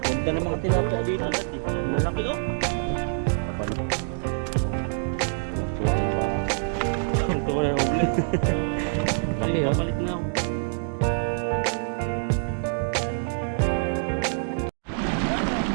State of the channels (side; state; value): left; silent; digital silence